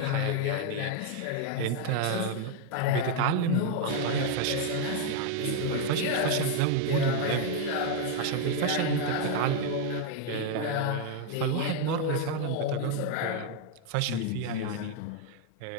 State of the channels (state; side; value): different; both; correlation 0.00